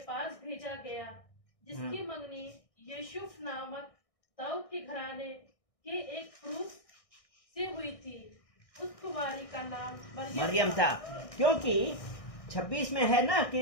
भेजा गया जिसकी मंगनी यूसुफ नामक दाऊद के घराने के एक पुरुष से हुई थी। उस कुंवारी का नाम मरियम था। क्योंकि 26 में है ना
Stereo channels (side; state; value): right; late; 1.6 ms